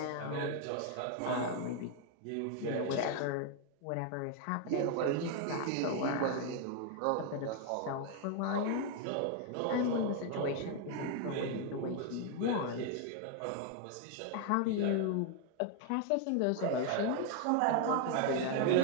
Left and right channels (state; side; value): different; both; correlation 0.00